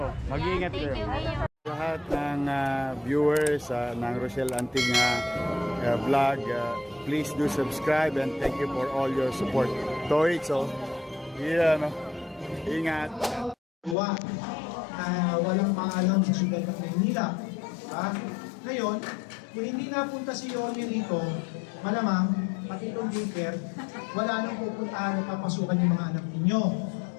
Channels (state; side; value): drops out; right; at 14.0 s